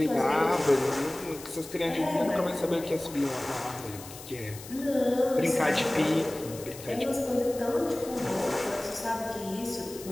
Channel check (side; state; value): left; noise; hiss, 15 dB below the sound